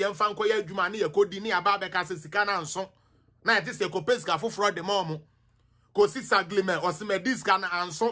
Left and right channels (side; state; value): both; identical; correlation 1.00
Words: fan koya jumani, you kodini ababe kase sikana anson. Na it is a copeska for fraud the momo. Kosi saglime, was me discana